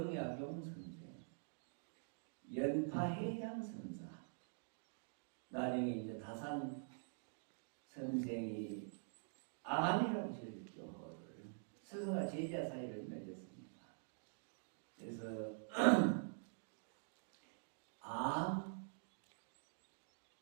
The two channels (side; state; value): left; silent; digital silence